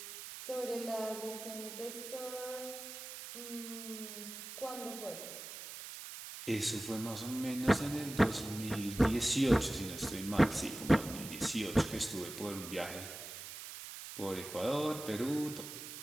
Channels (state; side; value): noise; right; hiss, 10 dB below the sound